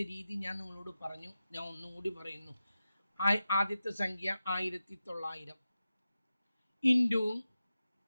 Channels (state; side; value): inverted; both; correlation -0.92